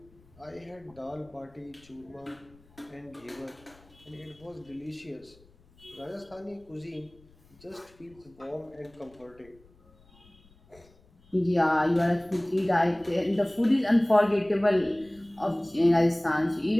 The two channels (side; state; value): left; noise; rumble, 28 dB below the sound